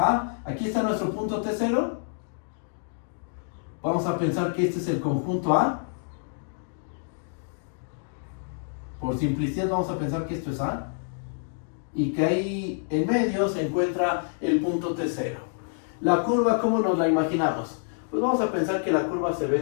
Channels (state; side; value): silent; right; digital silence